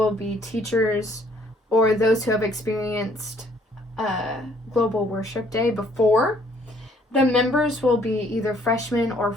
be teachers or those who have experienced Global Worship Day before. The members will be either freshmen or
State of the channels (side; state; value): both; normal; correlation 0.63